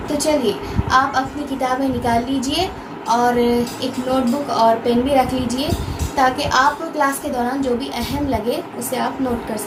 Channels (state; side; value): identical; both; correlation 1.00